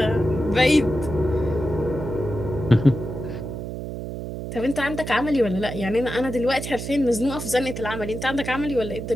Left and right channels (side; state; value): right; noise; hum, 7 dB below the sound